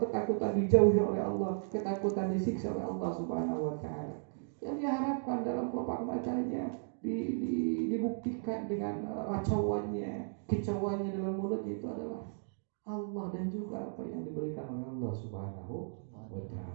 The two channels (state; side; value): silent; left; digital silence